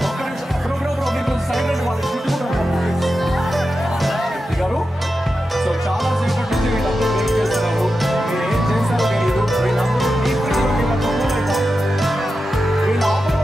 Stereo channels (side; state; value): both; normal; correlation 0.90